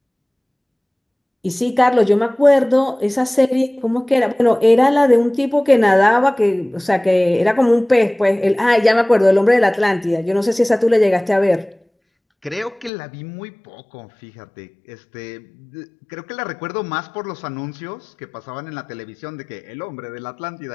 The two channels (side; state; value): right; drops out; at 12.9 s